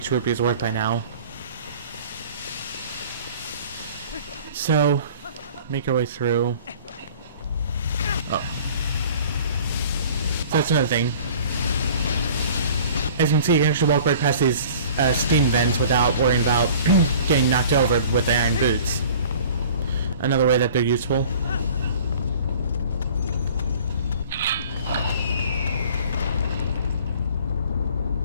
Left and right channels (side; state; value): both; inverted; correlation -0.47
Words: rupee is worth by now. So, make our way through. Oh. So that's another thing. As you can see, you can actually walk right past these steam vents without worrying about getting knocked over with the Iron Boots. Another way that they're useful.